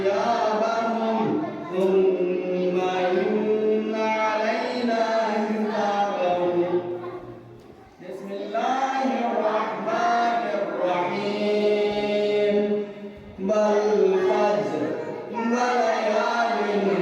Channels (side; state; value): both; identical; correlation 1.00